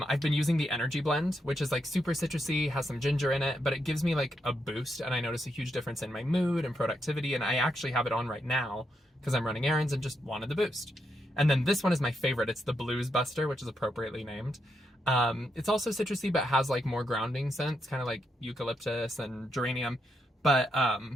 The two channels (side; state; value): both; normal; correlation 0.81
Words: been using the Energy Blend, which is like super citrusy, has some ginger in it, but it gives me like a boost, and I notice a huge difference in my mood and productivity, and I actually have it on right now because I'm running errands and just wanted the boost. And then this one is my favorite. It's the Blues Buster, which is appropriately named. It's also citrusy, but has like more grounding scents, kind of like eucalyptus and geranium. But